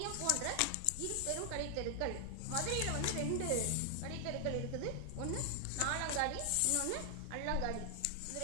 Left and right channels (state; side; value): different; both; correlation 0.00